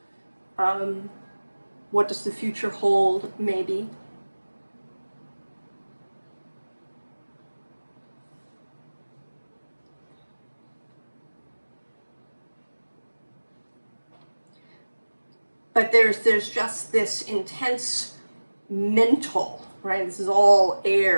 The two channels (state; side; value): inverted; both; correlation -1.00